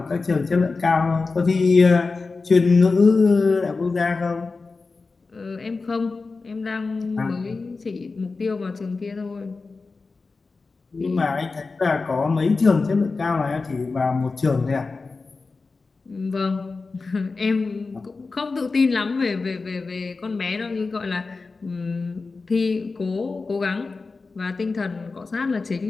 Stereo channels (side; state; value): right; quieter; 4.0 dB